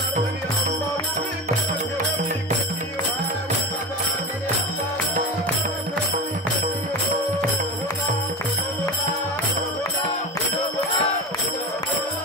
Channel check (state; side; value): normal; both; correlation 0.26